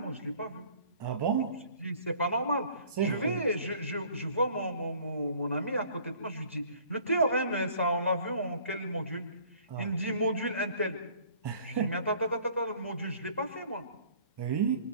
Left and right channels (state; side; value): inverted; both; correlation -0.54